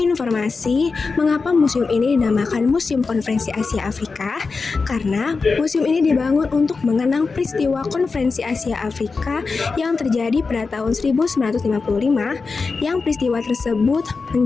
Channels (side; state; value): right; quieter; 4.4 dB